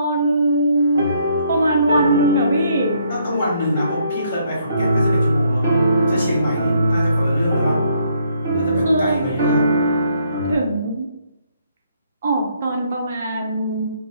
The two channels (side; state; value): both; inverted; correlation -0.70